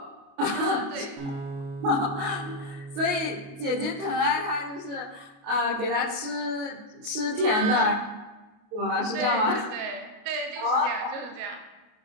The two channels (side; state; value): left; late; 28 ms